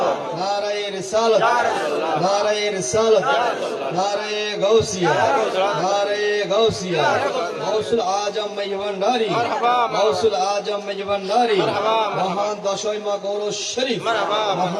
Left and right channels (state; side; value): identical; both; correlation 1.00